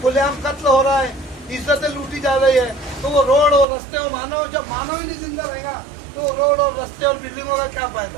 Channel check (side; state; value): left; drops out; at 3.7 s